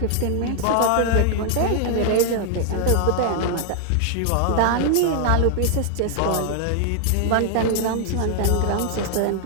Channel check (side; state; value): both; different; correlation 0.00